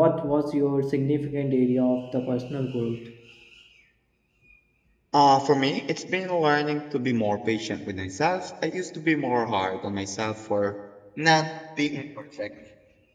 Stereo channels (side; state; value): both; identical; correlation 1.00